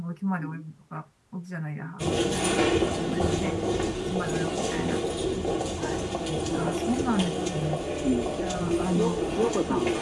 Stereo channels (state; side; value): identical; both; correlation 1.00